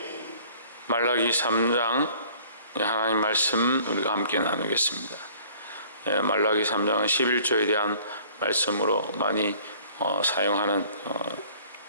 말라기 3장 하나님 말씀 우리가 함께 나누겠습니다. 말라기 3장은 11조에 대한 말씀으로 많이 사용하는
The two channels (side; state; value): both; inverted; correlation -0.53